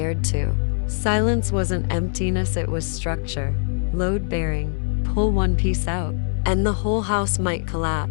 to. Silence wasn't emptiness, it was structure. Load-bearing. Pull one piece out, and the whole house might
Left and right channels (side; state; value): right; silent; digital silence